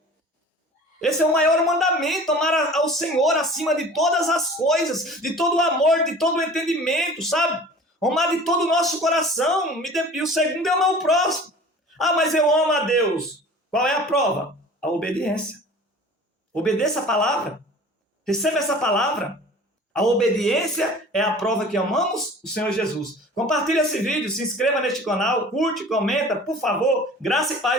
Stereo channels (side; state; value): both; normal; correlation 0.43